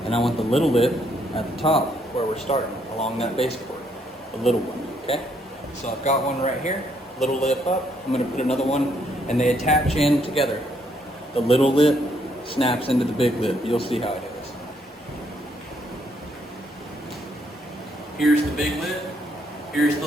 and I want the little lip at the top where we're starting, along that base board, the little one, okay? So I've got one right here, little lip up. I'm gonna put another one, and they attach in together. The little lip snaps into the big lip. You'll see how it is. Here's the big lip, here's the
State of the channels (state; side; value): normal; both; correlation 0.72